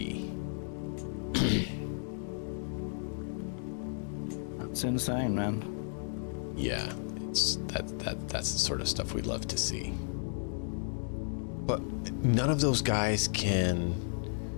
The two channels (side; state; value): right; silent; digital silence